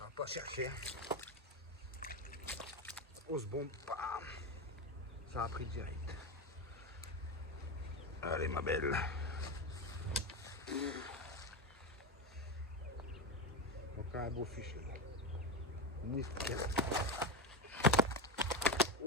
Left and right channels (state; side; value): normal; both; correlation 0.14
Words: va pas chercher. On se bombe, bam. Ça a pris direct. Allez, ma belle. Donc, un beau fichier. Nickel.